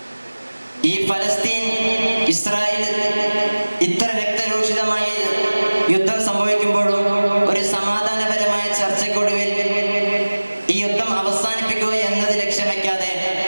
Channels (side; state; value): both; inverted; correlation -1.00